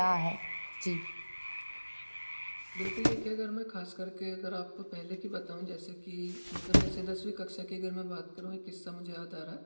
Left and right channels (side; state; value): both; inverted; correlation -1.00